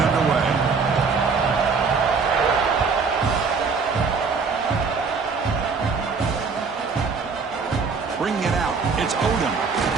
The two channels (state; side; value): quieter; left; 5.0 dB